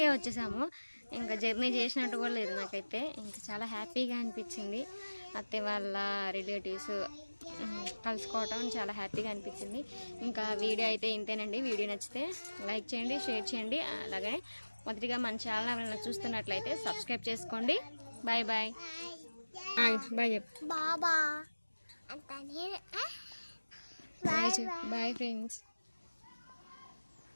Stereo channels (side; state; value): both; inverted; correlation -1.00